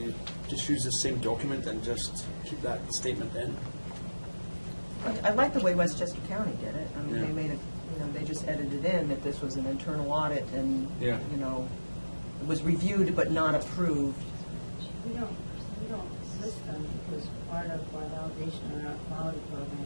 just use the same document and just keep that statement in? I like the way Westchester County did it. I mean, they made it, they just edited in that this was an internal audit and, it was reviewed but not approved. We don't list them because part of our validation and our quality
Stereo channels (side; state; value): both; inverted; correlation -1.00